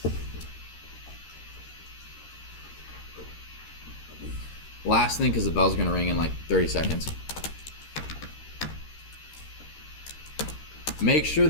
Last thing, because the bell's gonna ring in like 30 seconds. Make sure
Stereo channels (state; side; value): late; right; 13 ms